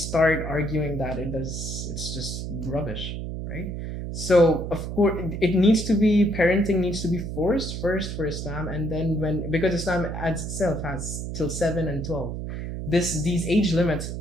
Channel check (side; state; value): right; noise; hum, 5 dB below the sound